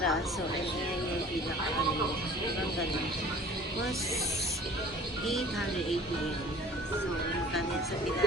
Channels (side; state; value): both; normal; correlation 0.47